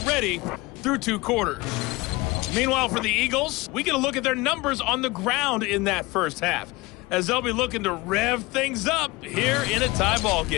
through 2 quarters. Meanwhile, for the Eagles, we get a look at their numbers on the ground in that first half, as they'll be looking to rev things up here in a tie ball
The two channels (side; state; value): right; quieter; 22.4 dB